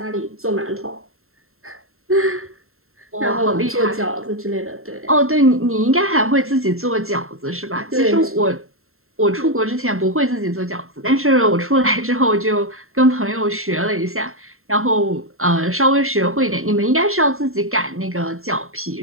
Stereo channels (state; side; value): late; left; 0.62 ms